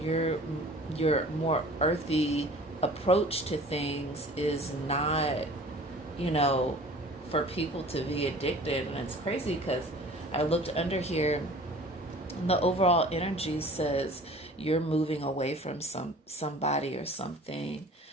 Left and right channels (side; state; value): both; normal; correlation 0.46